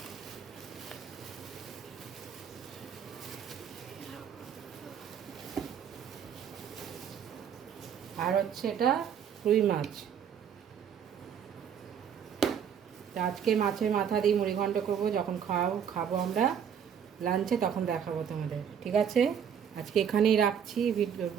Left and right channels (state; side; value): quieter; left; 8.1 dB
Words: আর হচ্ছে এটা রুই মাছ। আজকে মাছের মাথা দিয়ে মুড়িঘণ্ট করবো, যখন খাবো আমরা লাঞ্চে, তখন দেখাবো তোমাদের। ঠিক আছে, আজকে এখানেই রাখছি